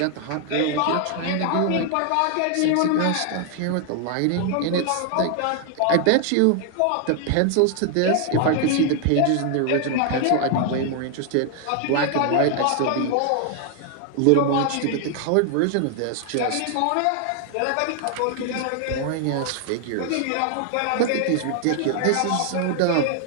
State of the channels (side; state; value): both; different; correlation 0.00